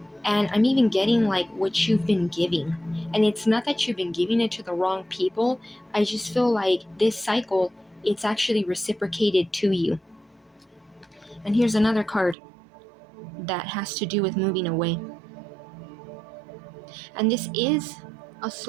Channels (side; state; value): left; drops out; at 12.4 s